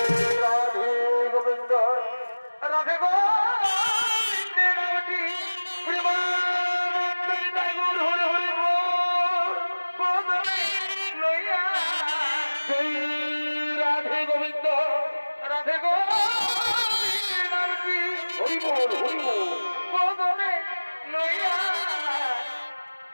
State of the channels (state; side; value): inverted; both; correlation -1.00